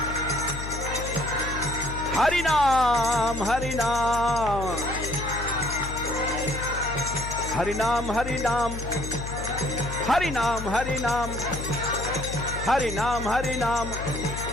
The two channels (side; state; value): left; noise; hum, 7 dB below the sound